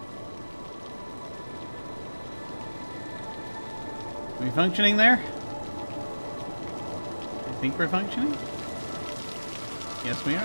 Are we functioning there? I think we're functioning? Yes, we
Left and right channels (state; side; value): inverted; both; correlation -1.00